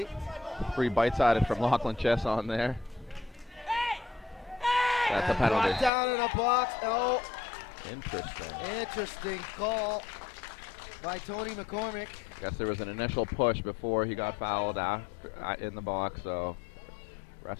Free bites at it from Lachlan Chess on there. That's a penalty. Down in a box. Oh. Interesting. Interesting call. by Tony McCormick. Guess there was an initial push before he got fouled after, in the box, so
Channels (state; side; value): drops out; right; at 5.9 s